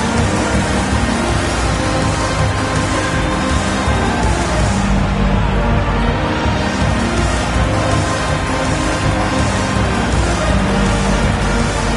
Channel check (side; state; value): both; identical; correlation 1.00